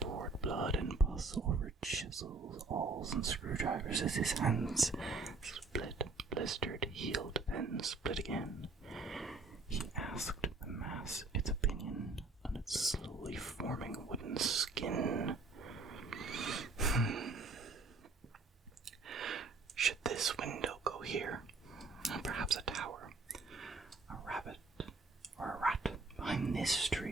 blood and pus over chisels, awls, and screwdrivers as his hands split, blistered, healed, then split again. He asked the mass its opinion on its slowly forming wooden skin. Should this window go here? Perhaps a tower, a rabbit, or a rat behind this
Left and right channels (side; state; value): left; quieter; 3.8 dB